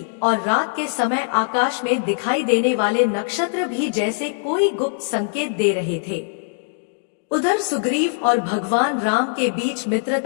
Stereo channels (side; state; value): right; silent; digital silence